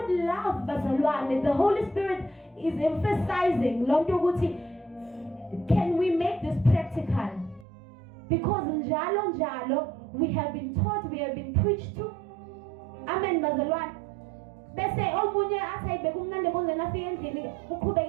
love bazalwane, the Holy Spirit is emphasizing lonto ukuthi can we make this practical? Because njalo we have been taught, we have been preached to. Amen bazalwane. Bese omunye athi ayibeke umnandi bonzeni afike endlini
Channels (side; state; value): left; drops out; at 7.7 s